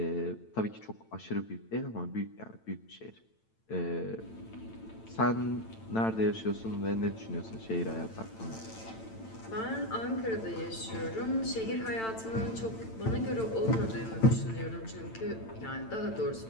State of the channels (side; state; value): right; late; 8.9 ms